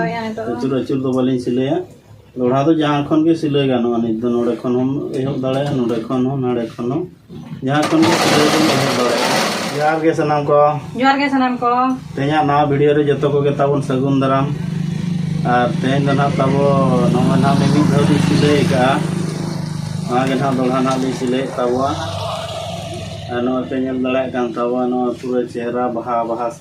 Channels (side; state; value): both; identical; correlation 1.00